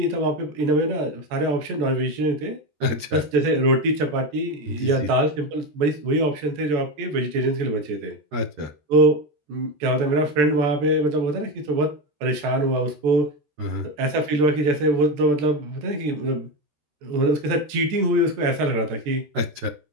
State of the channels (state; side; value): late; left; 13 ms